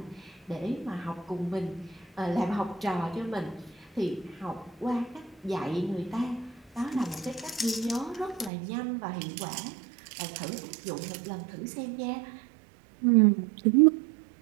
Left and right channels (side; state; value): left; drops out; at 8.5 s